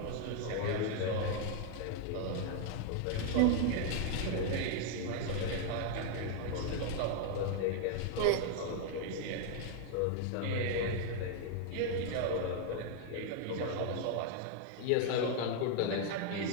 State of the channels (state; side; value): different; both; correlation 0.00